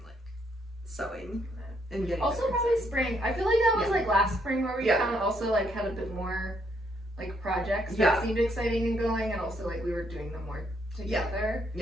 like sewing and getting. Also probably spring. I feel like that was like last spring where we kind of also like had a bit more like projects that seemed exciting and going, and also like we were doing them more together.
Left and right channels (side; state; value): both; normal; correlation 0.72